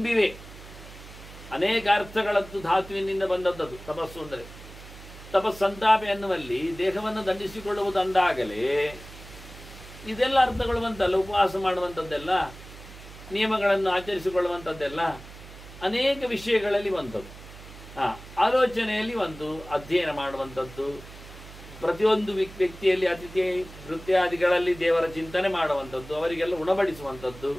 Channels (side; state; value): right; noise; hum, 16 dB below the sound